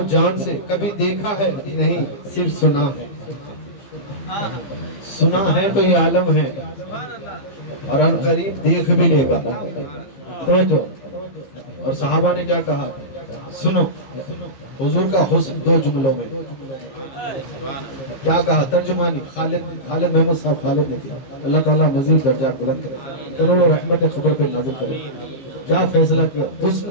جان سے، کبھی دیکھا ہے نہیں صرف سنا ہے، سنا ہے تو یہ عالم ہے اور ان قریب دیکھ بھی لے گا، توجہ۔ اور صحابہ نے کیا کہا سنو، حضور کا حسن دو جملوں میں کیا کہا، ترجمانی خالد محمود صاحب خالد نے کیا، اللہ تعالیٰ مزید درجات بلند کرے، کروڑوں رحمت خبر پہ نازل کرے۔ کیا فیصلہ کیا،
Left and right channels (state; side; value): late; right; 15 ms